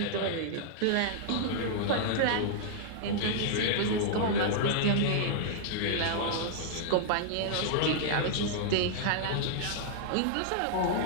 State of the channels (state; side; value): different; both; correlation -0.01